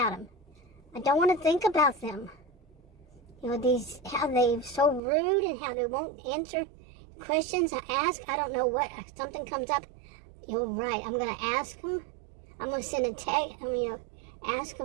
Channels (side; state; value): left; drops out; at 5.0 s